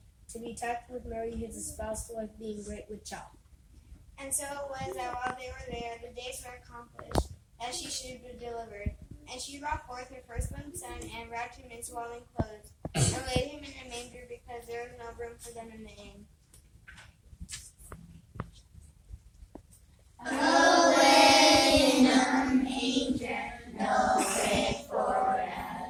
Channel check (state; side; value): identical; both; correlation 1.00